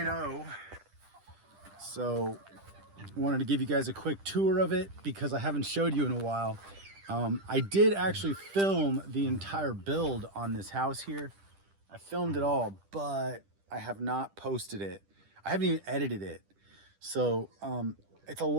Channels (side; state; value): left; late; 10 ms